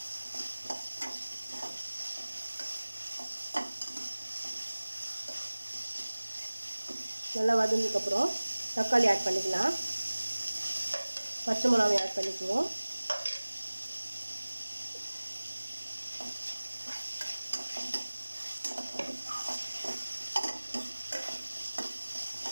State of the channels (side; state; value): both; inverted; correlation -1.00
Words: நல்லா வதங்கினதுக்கப்புறம் தக்காளி ஆட் பண்ணிக்கலாம். பச்சை மிளகாய் ஆட் பண்ணிக்குவோம்.